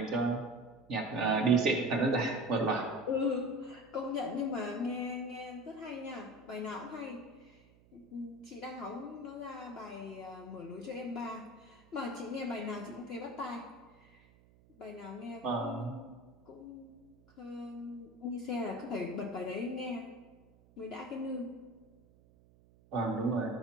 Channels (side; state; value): right; noise; hum, 27 dB below the sound